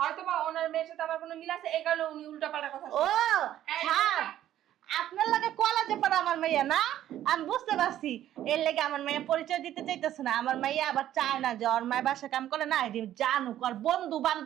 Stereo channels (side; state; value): left; quieter; 12.2 dB